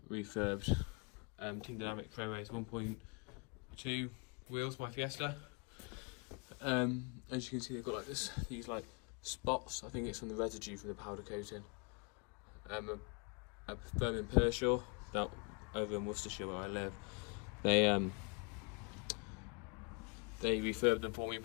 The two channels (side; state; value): right; quieter; 32.4 dB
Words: refurbed Team Dynamic Pro Race 1.2 wheels, my Fiesta. As you can see, they've got like these like spots. I think it's from the residue from the powder coating. A firm in Pershore, that over in Worcestershire where I live. They refurbed them for me and